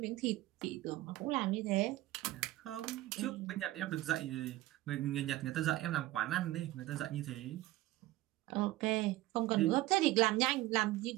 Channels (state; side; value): quieter; left; 17.0 dB